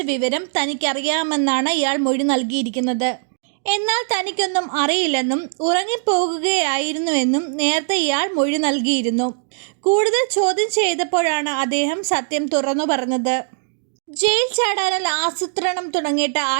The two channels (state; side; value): silent; left; digital silence